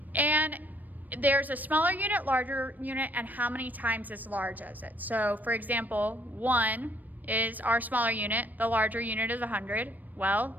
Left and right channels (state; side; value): late; left; 0.085 ms